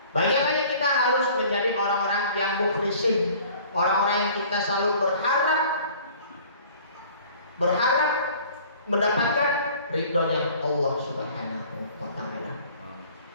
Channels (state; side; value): inverted; both; correlation -0.50